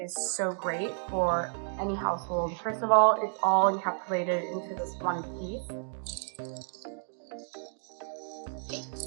so great for any household. First of all, it's all encapsulated into this one piece.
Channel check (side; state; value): left; silent; digital silence